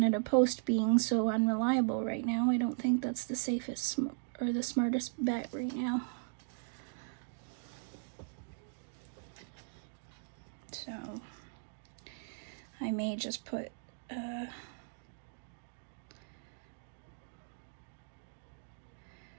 Post being so unreliable right now, I don't think that's the safest or the smartest bet right now. So I may just put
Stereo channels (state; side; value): silent; left; digital silence